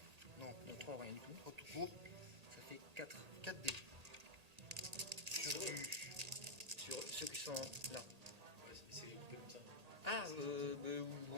Non, Donc 3, rien du tout. 3 tout court. Ça fait 4. 4 dés. Sur du. Sur ceux qui sont là. Ouais, c'est coupé comme ça. Ah,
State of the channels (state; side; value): late; left; 1.8 ms